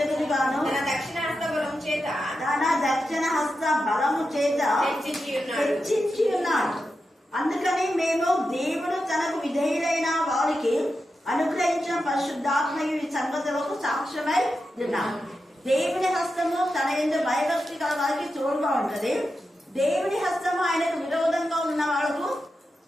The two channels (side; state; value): both; normal; correlation 0.89